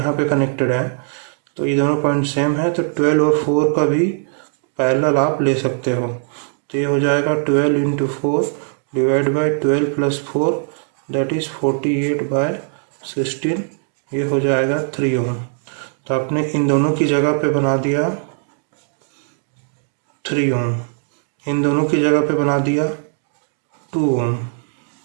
पे कनेक्टेड है। तो ये दोनों पॉइंट सेम है, तो 12 और 4 का भी पैरेलल आप ले सकते हो। तो ये हो जाएगा 12 × 4 डिवाइड बाय 12 + 4 दैट इज़ 48/16, ये हो जाएगा 3 ओम। तो आपने इन दोनों की जगह पे बना दिया 3 ओम, इन दोनों की जगह पे बना दिया 2 ओम,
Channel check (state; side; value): silent; left; digital silence